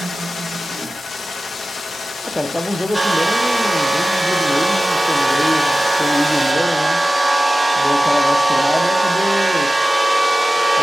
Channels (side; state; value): both; normal; correlation 0.96